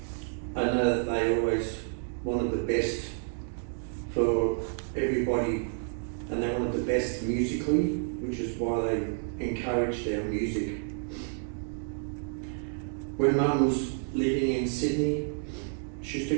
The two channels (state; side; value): silent; left; digital silence